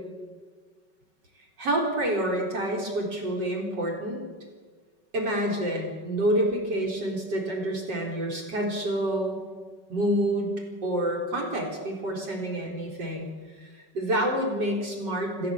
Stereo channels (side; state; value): left; late; 5.3 ms